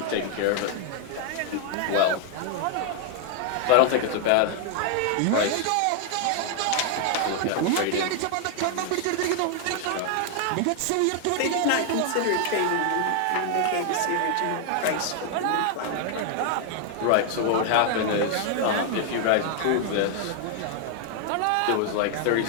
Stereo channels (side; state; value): both; different; correlation 0.00